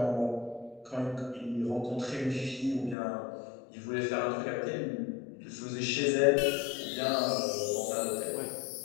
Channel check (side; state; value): right; drops out; at 3.0 s